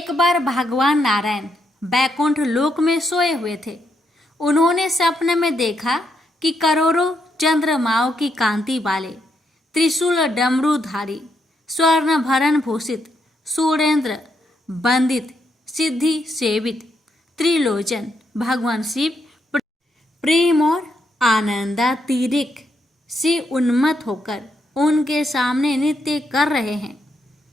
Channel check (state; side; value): normal; both; correlation 0.79